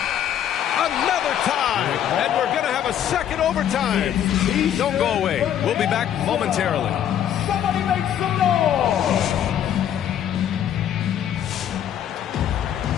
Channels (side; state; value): right; quieter; 10.1 dB